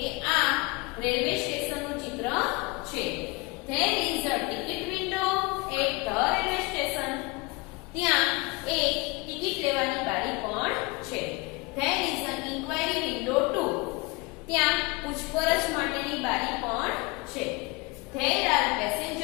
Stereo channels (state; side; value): quieter; right; 25.8 dB